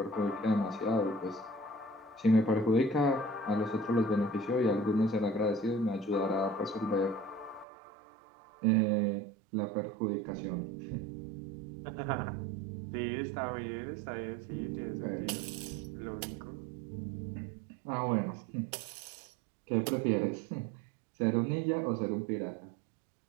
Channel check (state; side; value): drops out; left; at 7.7 s